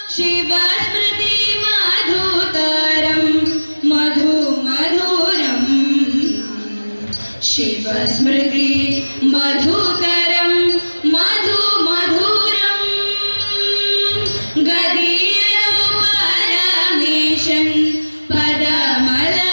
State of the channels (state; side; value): inverted; both; correlation -1.00